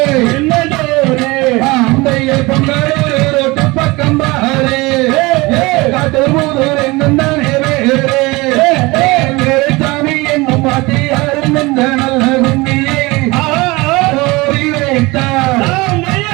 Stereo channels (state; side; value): quieter; left; 23.0 dB